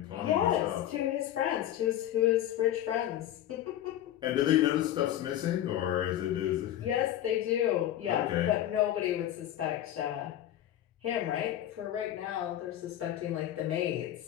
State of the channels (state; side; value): quieter; right; 12.3 dB